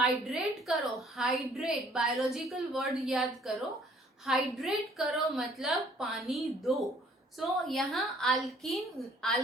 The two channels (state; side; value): normal; both; correlation 0.59